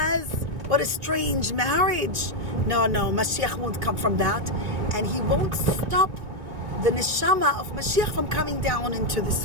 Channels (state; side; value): late; left; 2.0 ms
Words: What a strange marriage. No, Mashiach won't come from that. And he won't stop the neshama of Mashiach from coming down into this